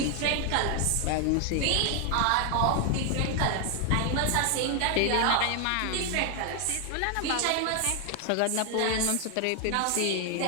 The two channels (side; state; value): both; different; correlation 0.00